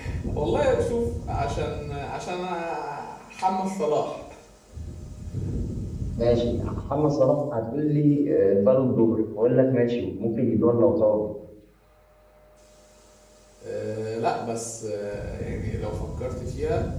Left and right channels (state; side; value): identical; both; correlation 1.00